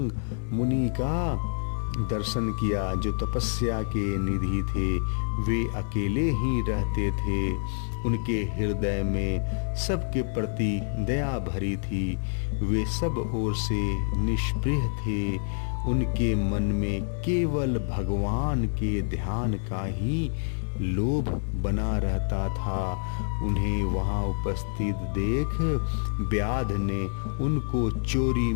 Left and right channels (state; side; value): silent; right; digital silence